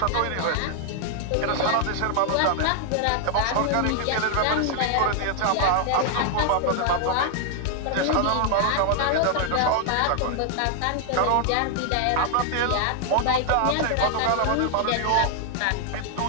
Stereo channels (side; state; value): both; different; correlation 0.00